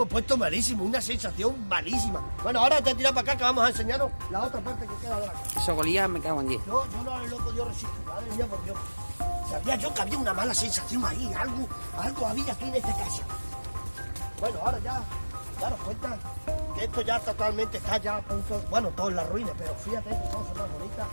puesto malísimo, una sensación malísima. Bueno, ahora te tiras para acá que vamos a enseñaros la otra parte que queda de la casa. Eso golía, me cago en 10. Yo no lo he podido resistir, madre mía, por Dios. Sabía yo que había una mala sensación ahí, algo había aquí en esta casa. Bueno, ahora ya daros cuenta que esto ya totalmente está ya a punto, bueno, todo en la ruina, pero fíjate que cosas más bonitas.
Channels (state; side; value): inverted; both; correlation -1.00